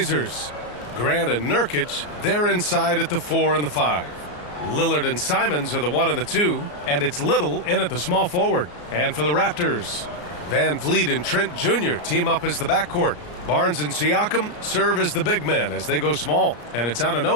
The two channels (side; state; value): right; late; 34 ms